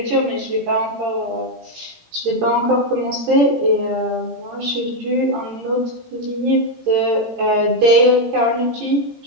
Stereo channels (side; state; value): left; late; 18 ms